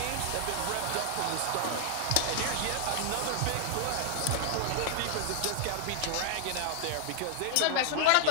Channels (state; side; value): different; both; correlation 0.00